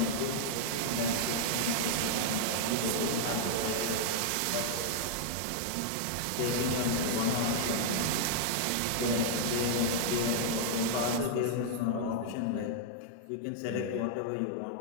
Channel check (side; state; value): both; different; correlation -0.01